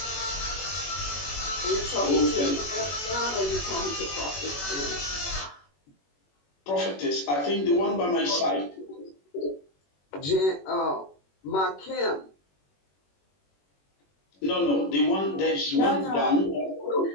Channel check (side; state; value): right; late; 21 ms